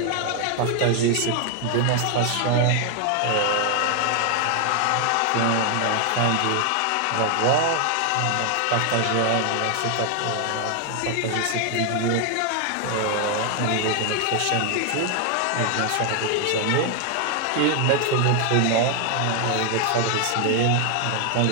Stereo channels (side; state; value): both; different; correlation 0.00